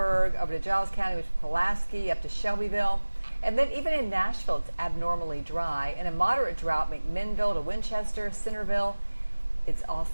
over to Giles County, which is Pulaski, up to Shelbyville. And then even in Nashville, it's abnormally dry. And a moderate drought, McMinnville to Winchester, Centerville. It's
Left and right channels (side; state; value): both; inverted; correlation -1.00